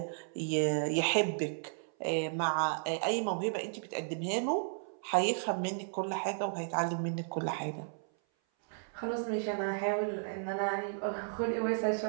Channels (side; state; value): left; silent; 55 dB below the other